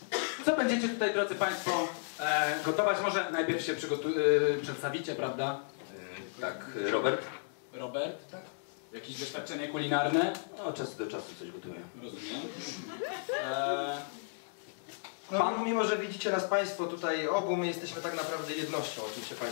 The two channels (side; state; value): right; silent; digital silence